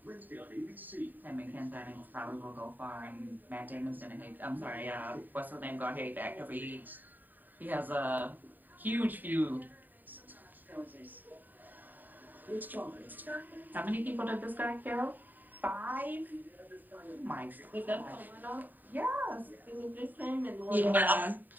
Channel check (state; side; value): late; left; 0.089 ms